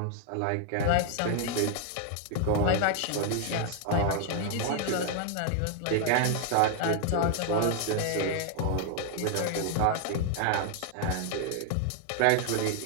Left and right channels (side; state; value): both; different; correlation 0.00